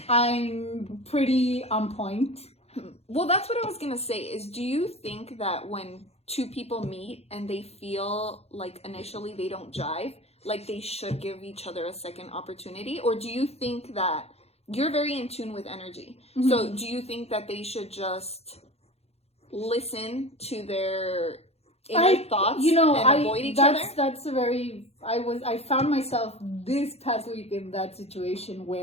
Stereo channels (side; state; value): right; late; 0.30 ms